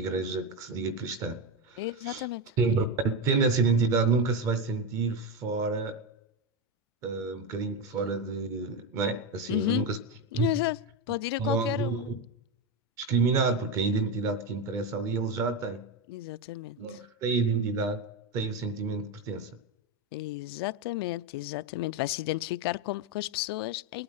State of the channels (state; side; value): normal; both; correlation 0.13